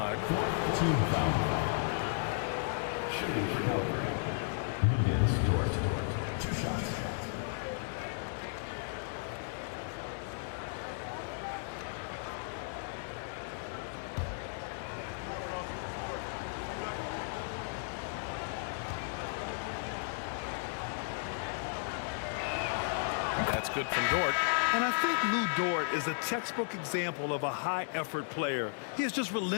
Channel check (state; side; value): silent; right; 55 dB below the other